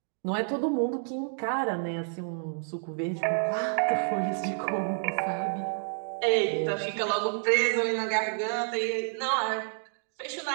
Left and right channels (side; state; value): left; silent; digital silence